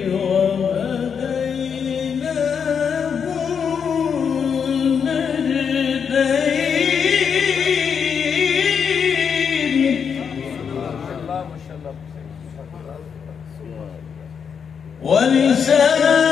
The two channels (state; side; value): quieter; right; 6.8 dB